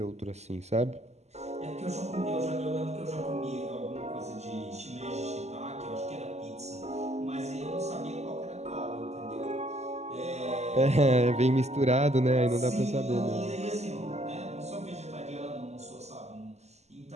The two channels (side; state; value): left; late; 0.32 ms